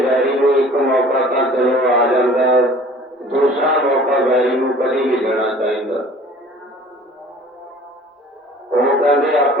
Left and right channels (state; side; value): normal; both; correlation 0.48